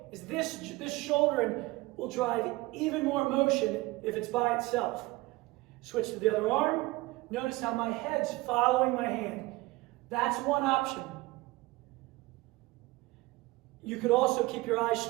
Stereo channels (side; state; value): left; quieter; 21.0 dB